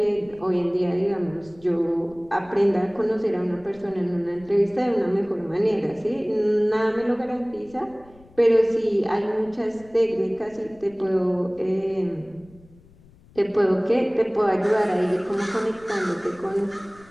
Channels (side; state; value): left; noise; rumble, 26 dB below the sound